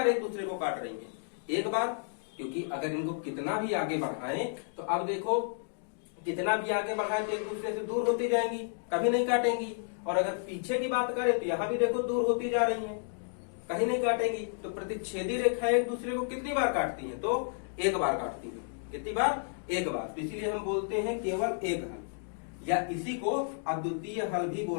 एक दूसरे को काट रही हैं, एक बार। क्योंकि अगर इनको कितना भी आगे बढ़ाएं तो अब देखो कितना भी आगे बढ़ाएं तो एक दूसरे से दूर होती जाएंगी, कभी नहीं काटेंगी। और अगर पीछे की बात करें तो यहाँ भी देखो दूर होती जा रही हैं, कहीं नहीं काटेंगी। तो प्रतिच्छेदी रेखाएं एक दूसरे को कितनी बार काटती हैं, तो एक बार काटती हैं। कितनी बार, एक बार। तो इसीलिए हम बोलते हैं केवल एक हल, या इसी को अद्वितीय हल भी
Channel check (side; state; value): right; silent; digital silence